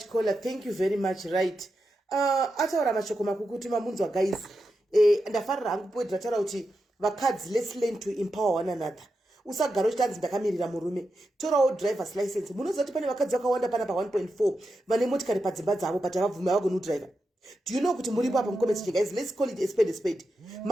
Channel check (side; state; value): both; normal; correlation 0.88